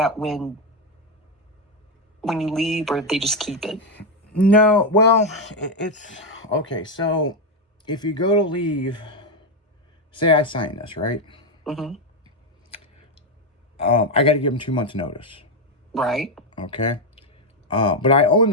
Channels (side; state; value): both; normal; correlation 0.05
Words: when you leave, or they just keep it? No, well, it's okay. So if you go to leave, say I sign this, right? Mm-hmm. I got to give them 2 months notice. Right. Okay. But I own